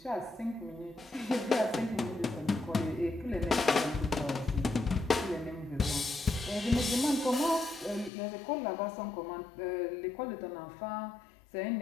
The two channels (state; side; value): drops out; right; at 8.1 s